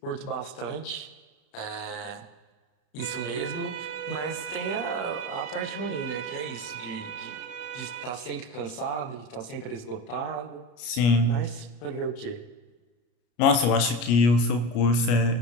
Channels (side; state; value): right; late; 33 ms